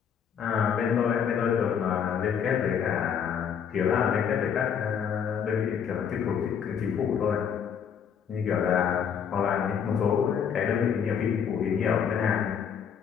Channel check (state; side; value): quieter; right; 7.6 dB